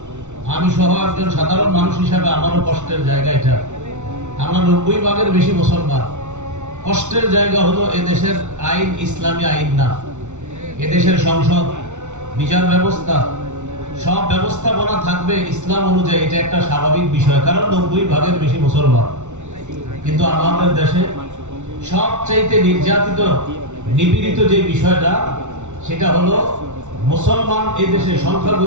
আমি সহ একজন সাধারণ মানুষ হিসাবে আমারও কষ্টের জায়গা এটা। আমরা 90 ভাগের বেশি মুসলমান। কষ্টের জায়গা হলো এদেশের আইন ইসলামী আইন না, এদেশের সংসদ, বিচার ব্যবস্থা, সব ব্যবস্থাপনা থাকবে ইসলাম অনুযায়ী। এটা একটা স্বাভাবিক বিষয়, কারণ 90 ভাগের বেশি মুসলমান। কিন্তু আমাদের দেশে সবচাইতে নির্যাতিত, নিপীড়িত যে বিষয়টা, সেটা হলো মুসলমান এই দেশে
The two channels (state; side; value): late; left; 0.84 ms